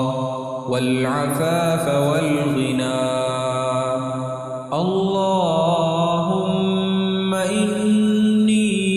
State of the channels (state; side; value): identical; both; correlation 1.00